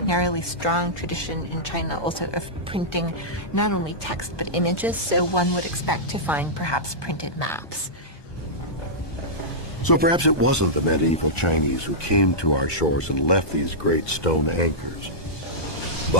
strong tradition in China also of printing not only text but images, so one would expect to find perhaps printed maps. So perhaps it wasn't the medieval Chinese who came to our shores and left these great stone anchors,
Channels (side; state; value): right; late; 1.2 ms